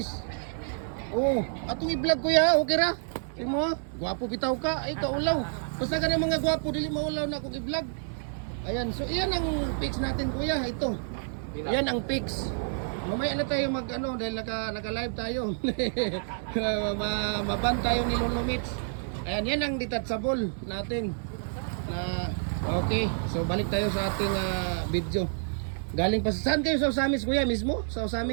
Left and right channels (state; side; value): silent; left; digital silence